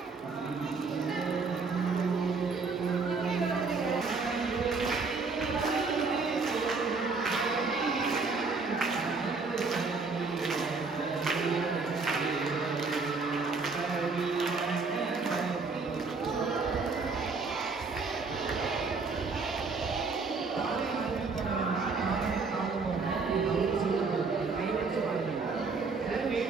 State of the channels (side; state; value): left; quieter; 4.3 dB